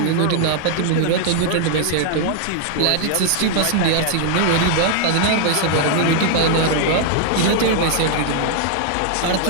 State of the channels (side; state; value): both; different; correlation 0.00